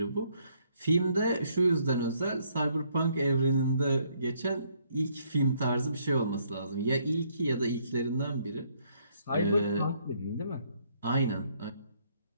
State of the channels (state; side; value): inverted; both; correlation -0.69